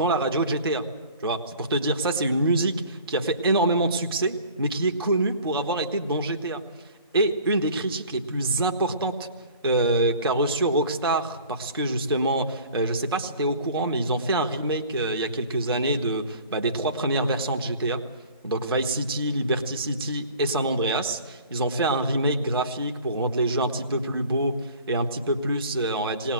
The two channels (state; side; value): inverted; both; correlation -0.46